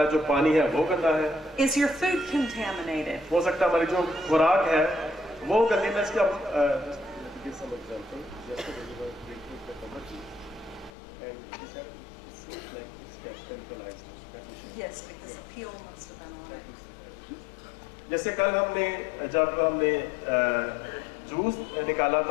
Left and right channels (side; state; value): right; drops out; at 10.9 s